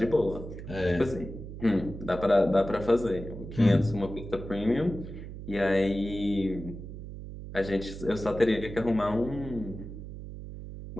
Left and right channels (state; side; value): noise; right; hum, 11 dB below the sound